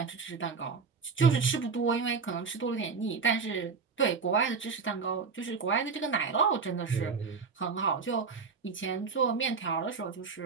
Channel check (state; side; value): quieter; left; 5.2 dB